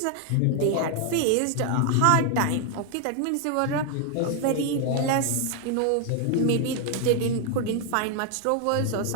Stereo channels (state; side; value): different; both; correlation 0.00